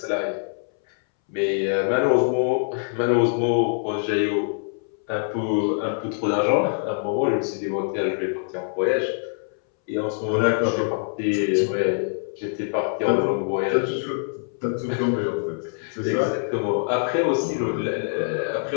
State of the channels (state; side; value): silent; right; 62 dB below the other